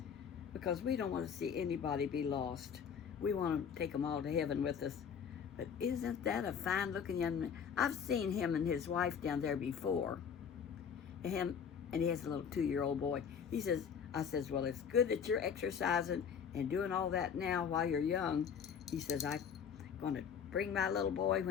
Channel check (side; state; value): right; quieter; 7.2 dB